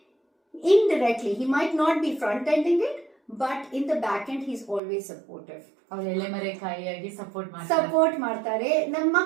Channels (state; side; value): drops out; left; at 4.8 s